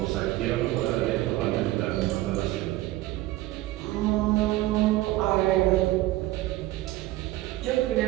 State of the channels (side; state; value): left; quieter; 16.9 dB